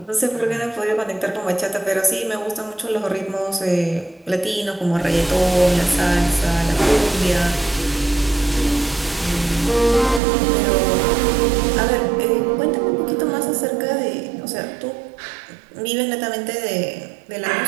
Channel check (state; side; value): drops out; left; at 10.2 s